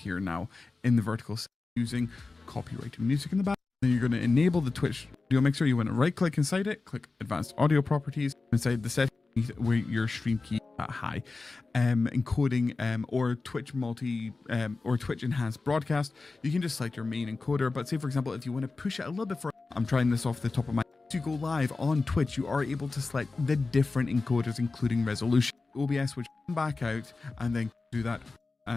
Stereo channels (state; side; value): quieter; right; 3.8 dB